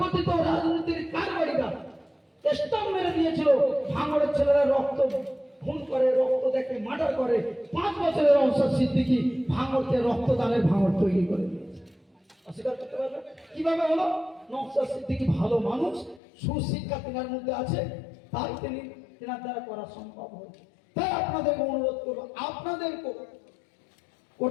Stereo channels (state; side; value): drops out; right; at 16.2 s